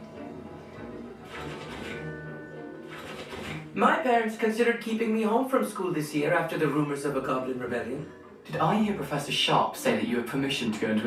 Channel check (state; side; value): identical; both; correlation 1.00